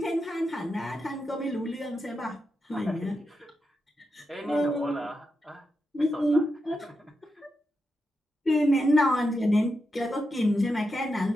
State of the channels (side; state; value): both; normal; correlation 0.87